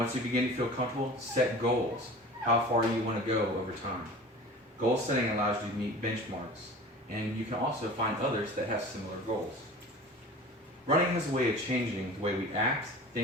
you begin to feel comfortable, set goals. How far you want to go over time. Goal setting allows you to meet benchmarks, and you can also find others that have similar goals. Running is a way of changing the way we act,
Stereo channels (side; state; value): both; normal; correlation 0.39